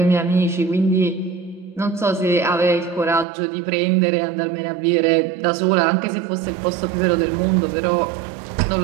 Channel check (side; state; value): left; drops out; at 3.2 s